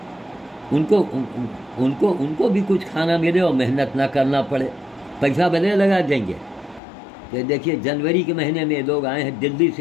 उनको भी कुछ खाना मिले और मेहनत ना करना पड़े, पैसा भले लगा देंगे। तो देखिए जनवरी के महीने में लोग आए हैं, दिल्ली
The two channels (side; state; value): right; drops out; at 6.8 s